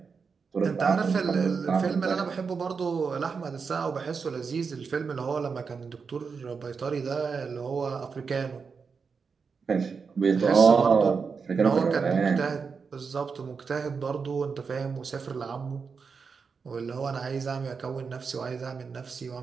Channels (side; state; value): left; quieter; 5.4 dB